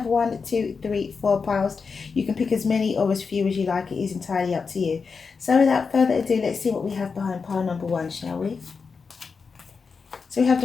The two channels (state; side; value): quieter; right; 5.2 dB